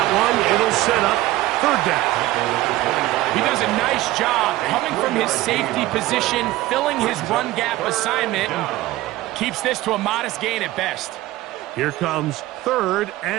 one. It'll set up third down. He does a nice job coming from his safety position, filling his run gap assignment, and keeps this to a modest gain at best. Here comes 3rd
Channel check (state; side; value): quieter; left; 16.8 dB